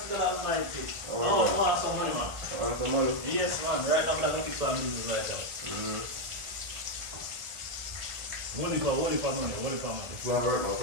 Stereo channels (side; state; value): left; late; 1.4 ms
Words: God Almighty. Oh, I want some money, man. Want some money? Yes, man. Right now, I'm going to get some business right now. What if I'm money? It's not work now.